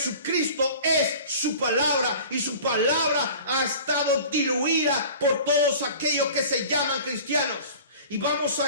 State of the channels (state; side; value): inverted; both; correlation -0.41